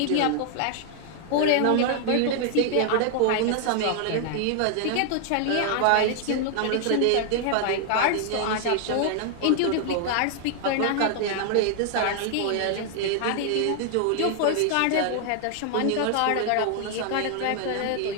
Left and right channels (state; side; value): different; both; correlation 0.00